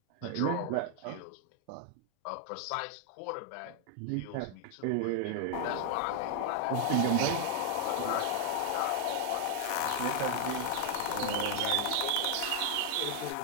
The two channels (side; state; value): both; different; correlation 0.00